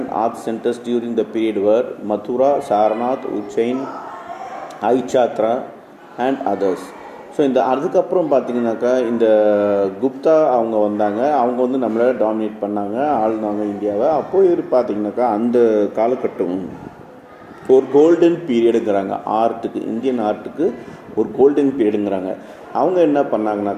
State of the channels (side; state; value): both; identical; correlation 1.00